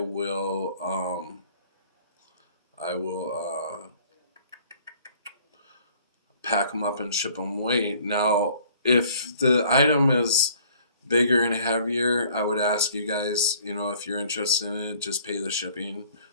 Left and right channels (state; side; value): inverted; both; correlation -0.55